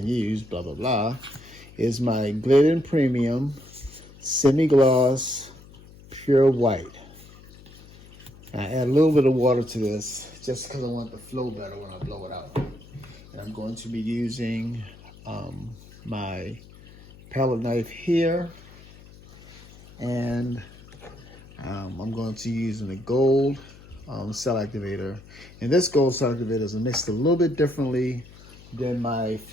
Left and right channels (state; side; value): noise; left; hum, 21 dB below the sound